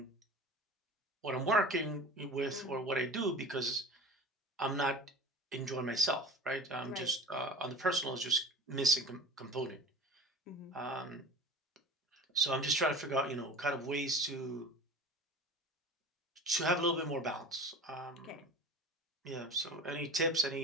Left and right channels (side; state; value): both; normal; correlation 0.36